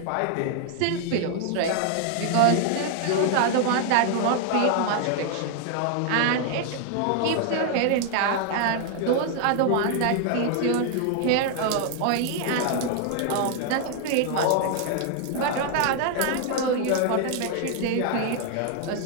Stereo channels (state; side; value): different; both; correlation 0.00